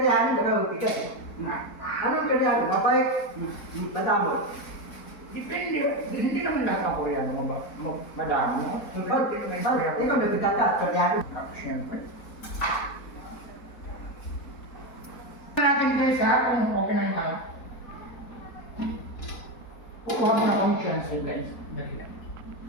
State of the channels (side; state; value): right; late; 4.1 ms